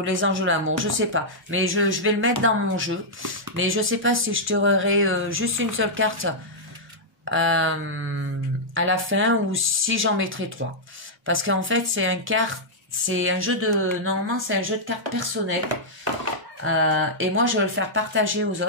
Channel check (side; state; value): both; normal; correlation -0.08